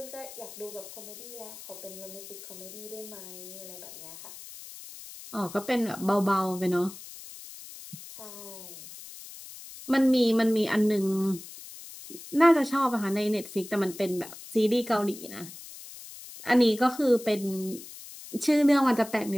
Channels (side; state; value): left; noise; hiss, 15 dB below the sound